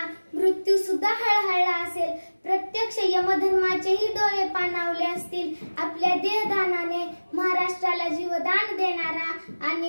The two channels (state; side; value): inverted; both; correlation -1.00